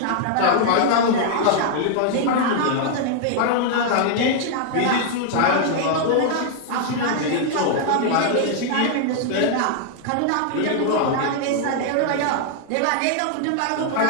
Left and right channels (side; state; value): both; different; correlation 0.00